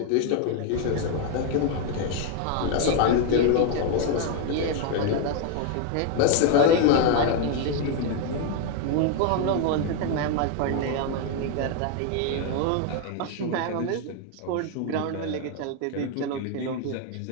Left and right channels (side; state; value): both; different; correlation 0.01